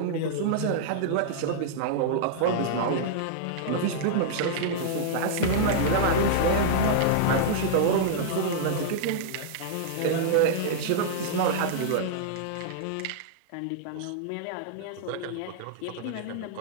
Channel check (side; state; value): both; different; correlation -0.02